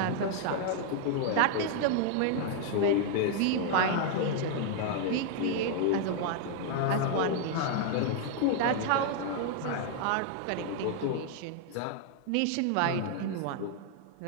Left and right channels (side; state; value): both; different; correlation -0.01